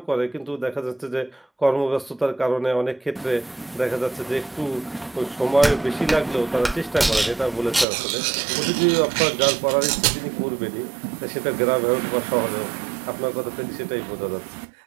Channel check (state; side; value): drops out; left; at 7.9 s